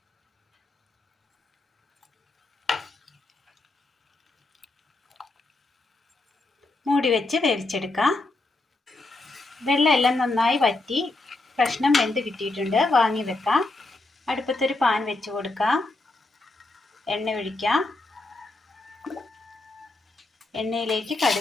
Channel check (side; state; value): right; quieter; 3.0 dB